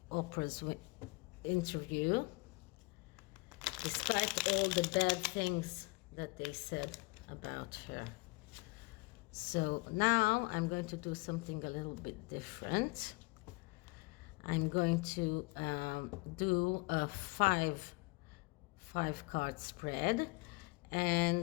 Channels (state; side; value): quieter; right; 26.4 dB